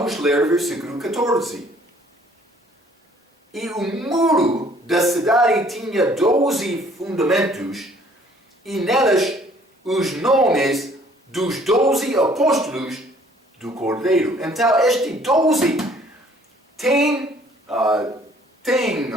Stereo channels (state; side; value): normal; both; correlation 0.58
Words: ler o versículo 14. E o muro da cidade tinha 12 fundamentos, e nelas os nomes dos 12 apóstolos do Cordeiro. Então, este 12 tem